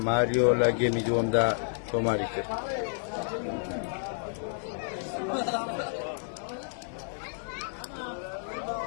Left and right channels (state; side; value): silent; right; 58 dB below the other